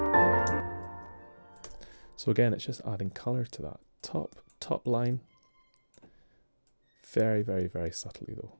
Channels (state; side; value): inverted; both; correlation -1.00